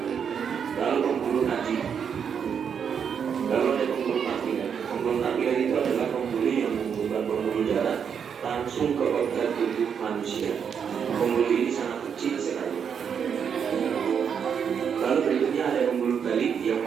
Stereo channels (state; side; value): quieter; left; 7.3 dB